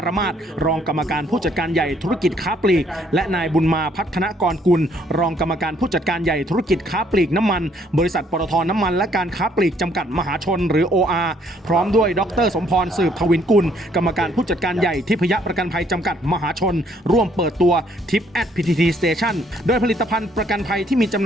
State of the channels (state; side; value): normal; both; correlation 0.65